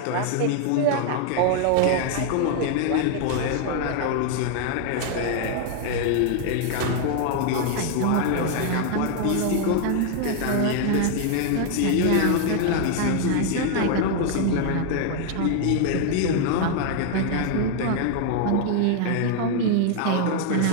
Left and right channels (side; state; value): both; different; correlation 0.00